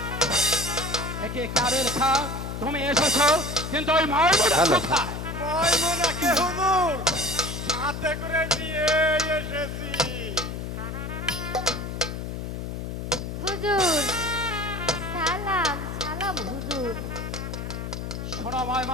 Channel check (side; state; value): left; noise; hum, 6 dB below the sound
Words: একে কাবিল খা তুমি এসেছো, কিন্তু ওই ময়মনা কোথায়? ময়মনাকে হুজুর সাথে করে নিয়ে এসেছি। হুজুর সালাম সালাম হুজুর। শোনো